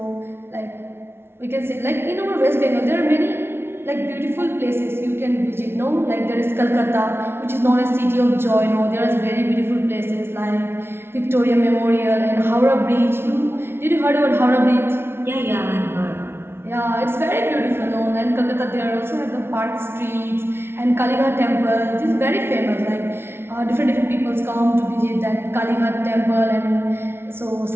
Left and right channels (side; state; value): left; late; 0.12 ms